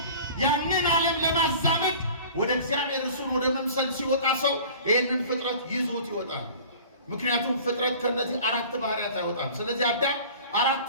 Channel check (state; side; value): inverted; both; correlation -0.43